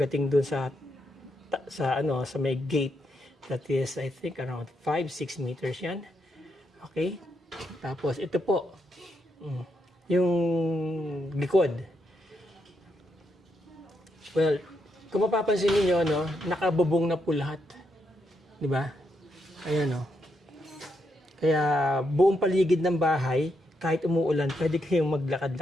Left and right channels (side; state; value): both; normal; correlation 0.80